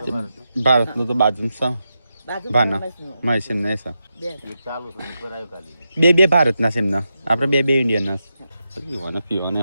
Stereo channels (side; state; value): both; inverted; correlation -0.87